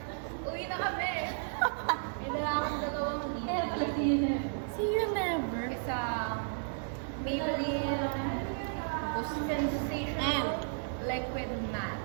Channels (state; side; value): silent; left; digital silence